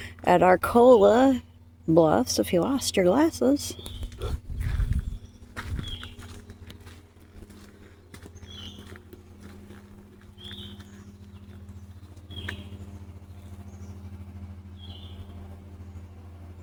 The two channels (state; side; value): identical; both; correlation 1.00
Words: At Arcola, Bluffs, if you lost your glasses.